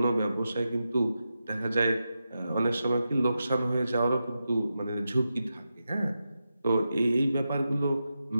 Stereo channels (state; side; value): inverted; both; correlation -0.89